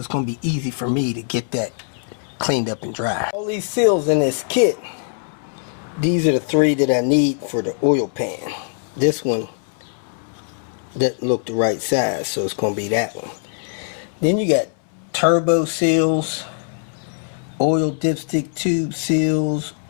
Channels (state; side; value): silent; right; 65 dB below the other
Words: going to be easy for me to get that cleaned up and dry. All these seals in this kit, these are the 3 that I need for the oil pan. This one doesn't look the right size, so it's going to be that one. Then you got turbo seals, oil dipstick tube seals,